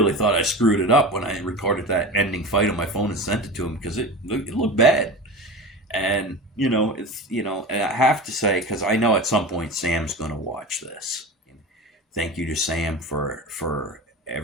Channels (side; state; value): both; normal; correlation 0.30